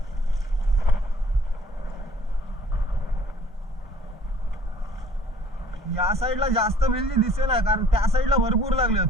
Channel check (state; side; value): normal; both; correlation 0.55